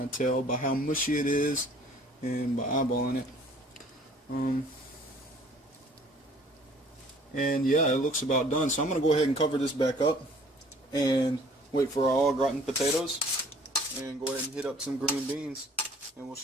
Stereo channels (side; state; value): both; normal; correlation 0.54